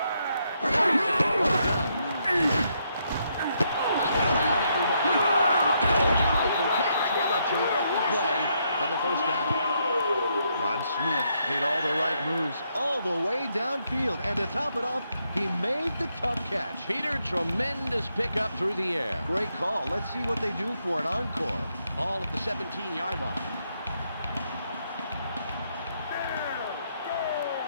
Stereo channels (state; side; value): inverted; both; correlation -0.77